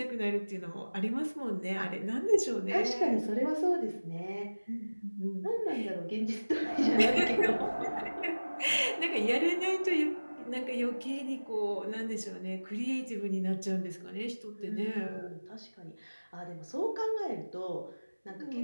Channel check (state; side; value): inverted; both; correlation -1.00